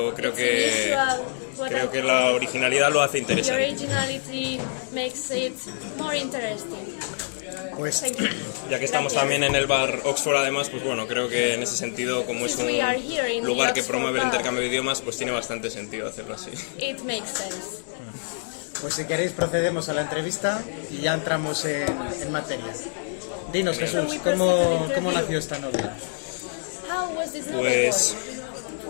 creo que la originalidad lo hace interesante. Pues, Ya que estamos también en el bar Oxford, además, pues bueno, creo que en ese sentido, como es un lugar que promueve el intercambio de idiomas, pues tiene bastante sentido hacerlo así. pues si queréis procedemos a la entrevista y ya entramos en materia. Dinos, Jesús, ¿cómo nació esta novela? Pues,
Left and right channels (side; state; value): right; silent; digital silence